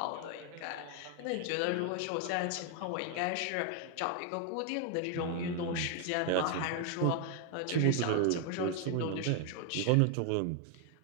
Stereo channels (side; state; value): both; different; correlation 0.01